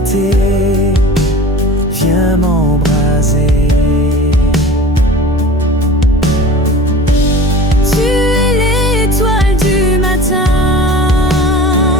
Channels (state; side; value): normal; both; correlation 0.39